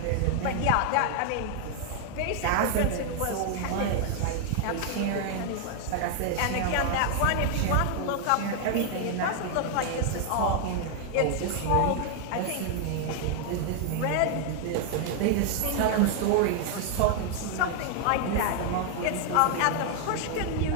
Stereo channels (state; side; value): different; both; correlation 0.00